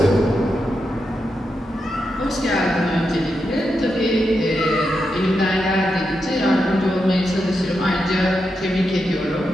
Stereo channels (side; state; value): both; normal; correlation 0.86